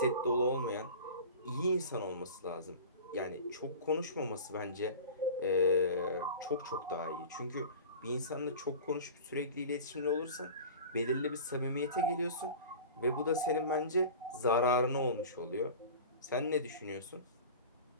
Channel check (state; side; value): inverted; both; correlation -0.36